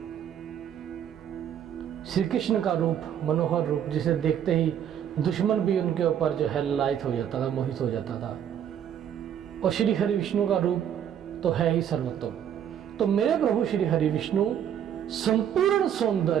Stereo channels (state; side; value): quieter; left; 9.4 dB